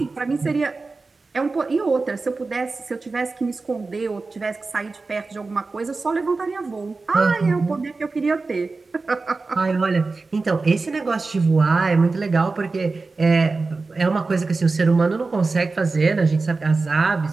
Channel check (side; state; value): left; quieter; 3.9 dB